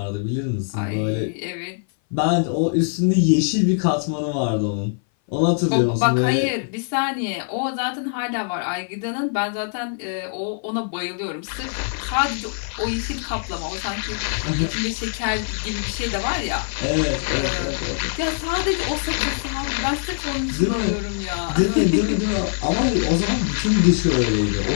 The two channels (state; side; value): silent; right; 58 dB below the other